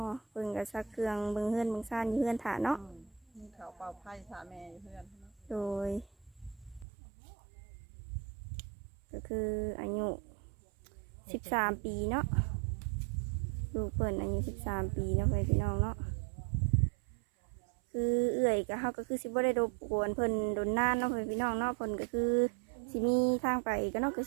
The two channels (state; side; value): drops out; left; at 6.9 s